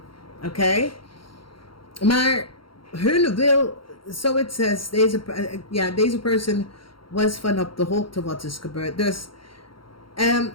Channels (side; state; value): right; late; 0.73 ms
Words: oké? Maar hun wil, so it says, deze person was van op de hoogte wat is gebeurd. Dus